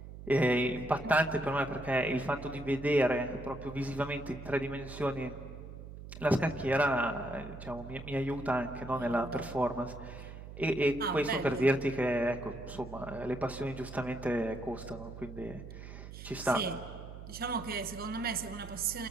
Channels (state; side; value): noise; right; hum, 12 dB below the sound